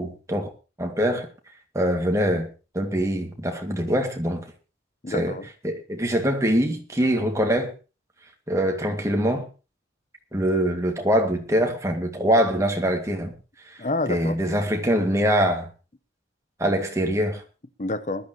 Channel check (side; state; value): both; normal; correlation 0.57